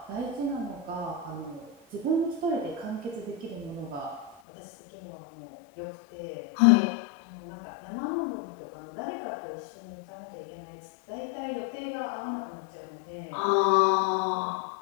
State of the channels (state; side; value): drops out; right; at 4.4 s